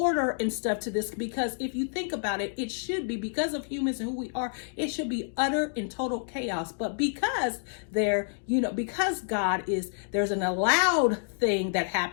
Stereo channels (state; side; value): silent; right; digital silence